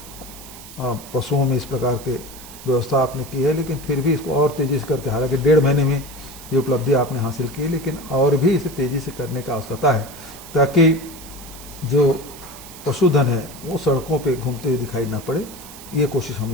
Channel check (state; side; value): noise; right; hiss, 16 dB below the sound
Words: पशुओं में इस प्रकार के व्यवस्था आपने की है, लेकिन फिर भी इसको और तेजी से करके, हालांकि 1.5 महीने में ये उपलब्धि आपने हासिल की, लेकिन और भी इसे तेजी से करने की आवश्यकता है ताकि जो पशुधन है वो सड़कों पे घूमते हुए दिखाई ना पड़े। ये कोशिश हम